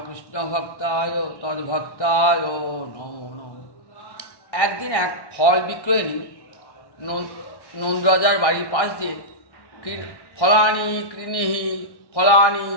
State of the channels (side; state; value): right; late; 1.1 ms